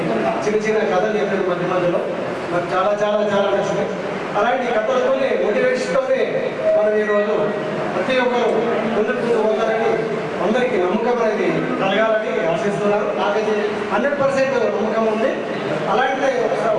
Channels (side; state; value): both; identical; correlation 1.00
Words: చిన్న కథలు చెప్పారు మధ్యలో, నాకు చాలా చాలా చాలా నచ్చినాయి. అలాంటి కథలతోనే మోటివేషన్తోనే మనం ఈరోజు ప్రతి ఒక్కరు ముందుకు పోతారని అందరికీ నమ్మకం అనేది కలగాలని ఆశిస్తున్నాను. నాకైతే 100% నమ్మకం ఉంది. అలాంటి